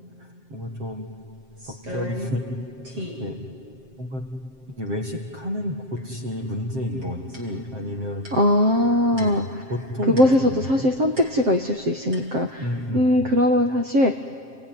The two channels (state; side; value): late; left; 7.6 ms